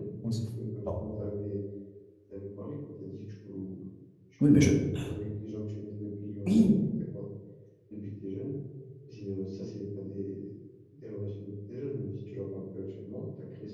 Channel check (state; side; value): identical; both; correlation 1.00